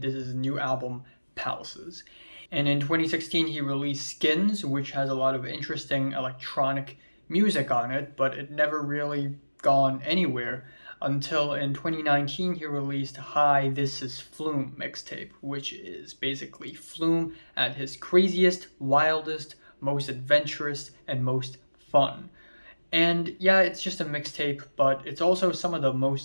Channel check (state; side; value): inverted; both; correlation -1.00